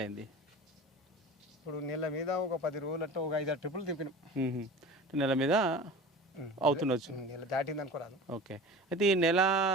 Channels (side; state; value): both; normal; correlation 0.36